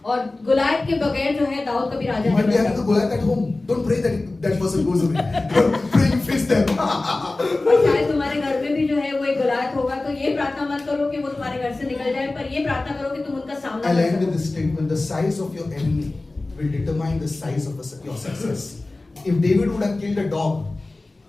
और गुलायत के बगैर जो है दाऊद कभी राजा You might be नहीं having the बन Goliath at home. Don't pray that that person goes away. Pray you face them. सकता। और शायद तुम्हारे घर में भी जो है वो एक गुलायत होगा, तो ये प्रार्थना मत करो कि वो तुम्हारे घर से निकल जाए, पर ये प्रार्थना करो कि तुम उनका सामना I'll कर end with सको। this statement. The size of your enemy will determine the size of your success. If David would have killed a dog,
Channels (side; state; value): right; quieter; 3.1 dB